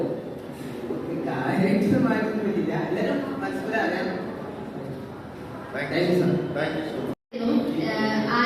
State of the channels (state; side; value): identical; both; correlation 1.00